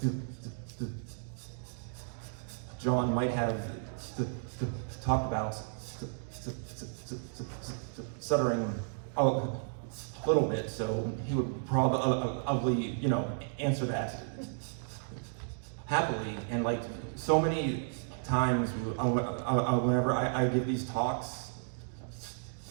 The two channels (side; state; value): left; silent; digital silence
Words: John might have talked about stuttering a little bit, so he would probably, you know, answer that happily. And like so many times whenever I give these talks,